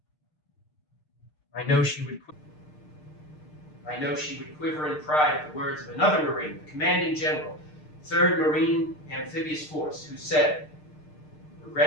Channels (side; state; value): right; late; 6.6 ms